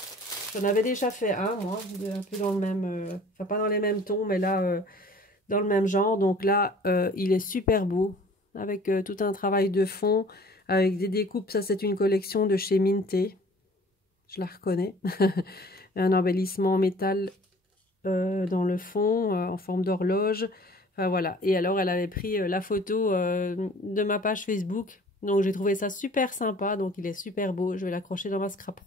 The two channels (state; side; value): normal; both; correlation 0.50